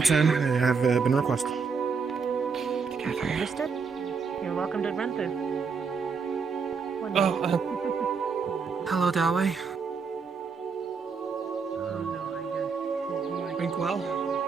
I have been requested. Understood. You're welcome to run through. Oh, hello, Dawei. Drink well.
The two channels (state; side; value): quieter; left; 5.4 dB